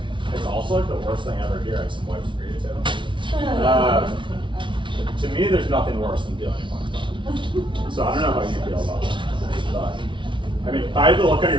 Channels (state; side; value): late; left; 0.24 ms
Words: it. It's also like the worst thing ever here. I have some wipes for you too. To me, there's nothing worse than feeling punked on. So I don't know how you feel about that. But, I mean, by the look on